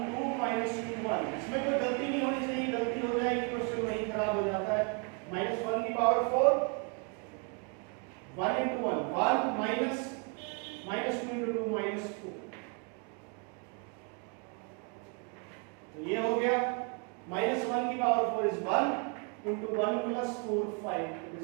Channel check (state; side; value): quieter; left; 36.4 dB